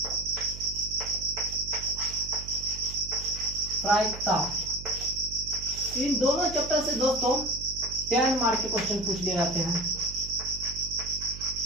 प्रायिकता। इन दोनों चैप्टर से दोस्तों 10 मार्क के क्वेश्चन पूछ लिए जाते हैं।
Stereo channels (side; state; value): right; noise; hum, 12 dB below the sound